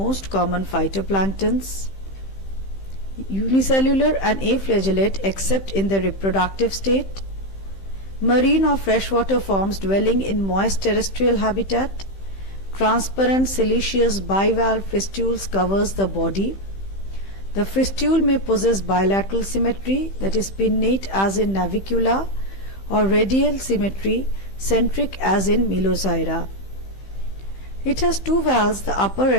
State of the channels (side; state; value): right; late; 15 ms